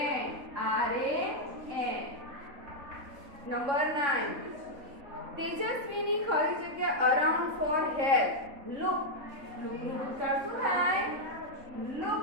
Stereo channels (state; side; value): late; left; 3.6 ms